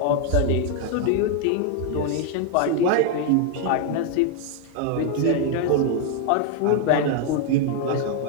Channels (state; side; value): different; both; correlation 0.01